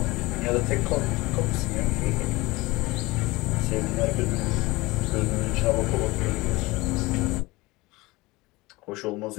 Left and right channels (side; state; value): right; quieter; 21.7 dB